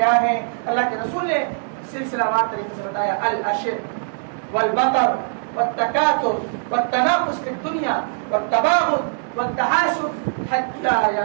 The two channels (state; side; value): silent; left; digital silence